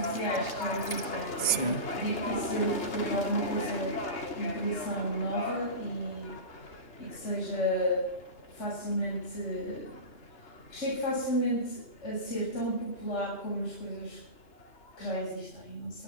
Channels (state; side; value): late; right; 2.8 ms